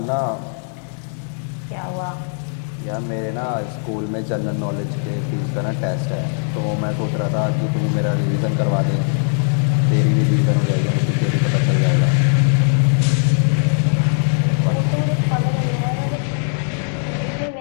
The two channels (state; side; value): silent; right; 66 dB below the other